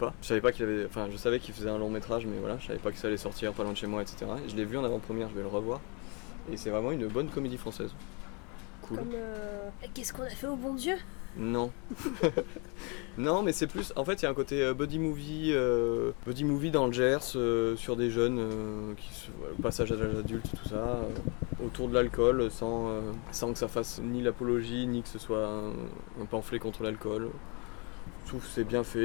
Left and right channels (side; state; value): right; quieter; 33.0 dB